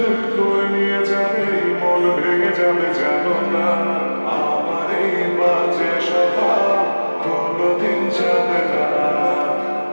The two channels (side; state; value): both; inverted; correlation -1.00